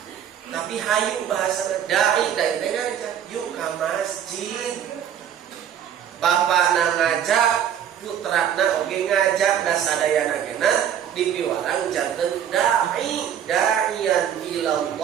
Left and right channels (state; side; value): quieter; left; 9.3 dB